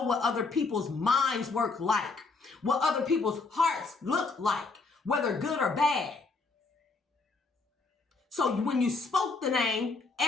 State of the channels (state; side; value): quieter; right; 4.0 dB